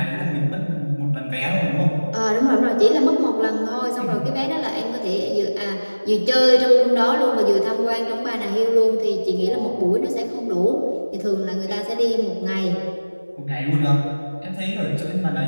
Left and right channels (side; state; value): both; inverted; correlation -1.00